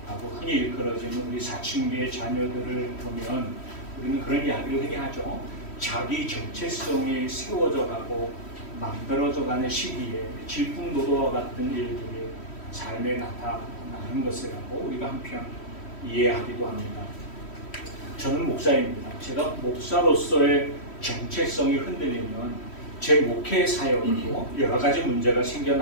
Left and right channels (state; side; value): late; right; 3.1 ms